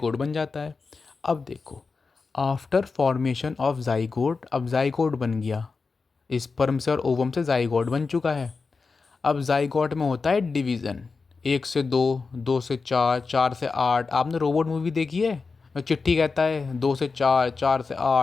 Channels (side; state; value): right; quieter; 4.5 dB